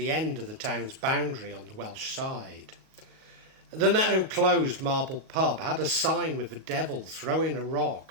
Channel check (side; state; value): left; late; 38 ms